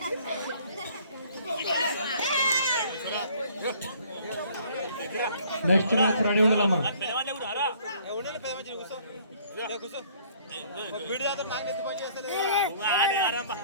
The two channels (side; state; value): both; inverted; correlation -0.58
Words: నెక్స్ట్ మ్యాచ్ రెడీ ఉండాలమ్మా.